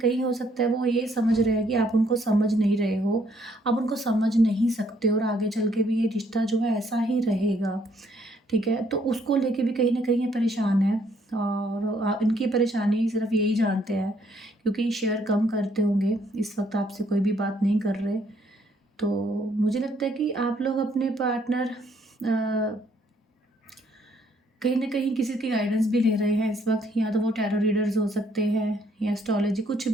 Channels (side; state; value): both; normal; correlation 0.68